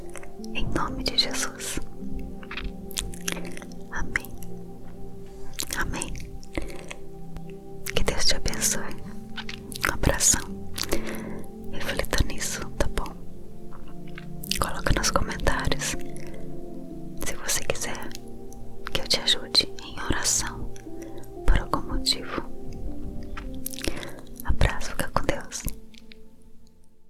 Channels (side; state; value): both; identical; correlation 1.00